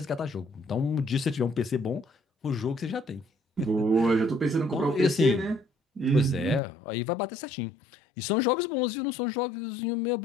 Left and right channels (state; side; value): drops out; right; at 6.6 s